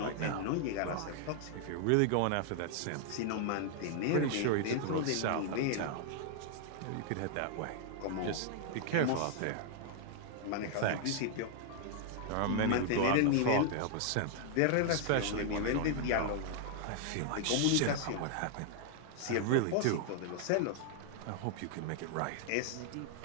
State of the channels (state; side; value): different; both; correlation 0.00